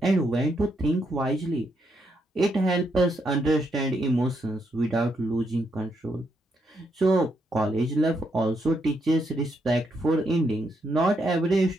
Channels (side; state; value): both; normal; correlation 0.78